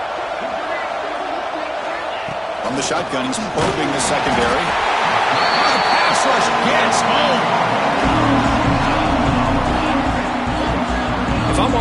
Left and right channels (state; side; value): identical; both; correlation 1.00